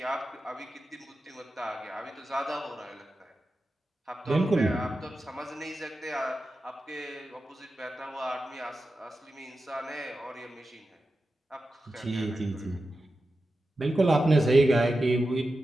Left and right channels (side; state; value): both; normal; correlation 0.92